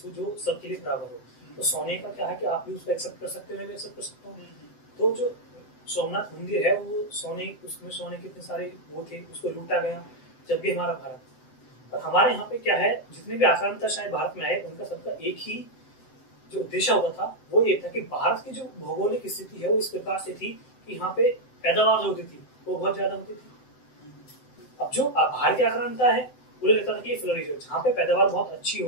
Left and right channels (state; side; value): late; right; 7.8 ms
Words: जो सबके लिए बराबर हो, तो सोने का क्या है कि आप भी उसको एक्सेप्ट कर सकते हो, मैं भी एक्सेप्ट कर सकता हूँ। तो जो सोमनाथ मंदिर है वो सोने, उसमें सोने के इतने सारे वो थे, उसको लूटा गया जब भी हमारा भारत। और हमारे यहाँ पे क्या है, जितने भी आक्रांता शायद भारत में आए, उनका सबका एक ही जो उद्देश्य होता था वो ये था कि भारत की जो भौगोलिक स्थिति है वो इस प्रकार से थी कि यहाँ पे पैदावार जो होती थी वो बहुत ज्यादा होती थी। अब जो बाहर की आक्रांता है उन्हें लगता था कि ये फ्लोरिश है, जहाँ पे पैदावार बहुत अच्छी